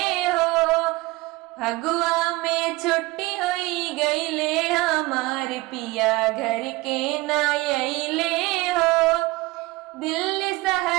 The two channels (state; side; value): quieter; left; 21.4 dB